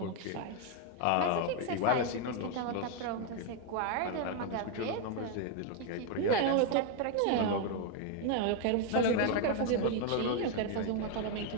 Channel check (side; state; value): both; different; correlation 0.01